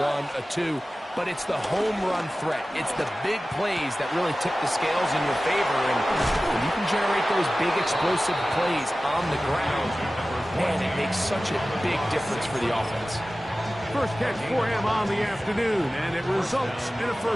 a 2, but it's the home run threat. It's the big plays that really tip the scales in your favor, and when you can generate those big explosive plays on the ground, man, it makes such a big difference for the offense. First catch for him on the afternoon, and it results in a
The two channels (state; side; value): normal; both; correlation 0.96